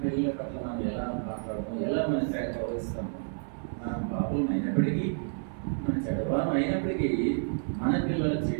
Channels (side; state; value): left; silent; 58 dB below the other